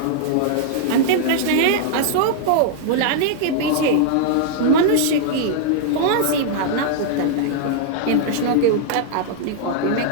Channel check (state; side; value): different; both; correlation -0.01